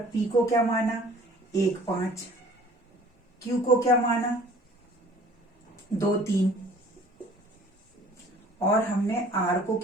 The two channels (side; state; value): both; normal; correlation 0.51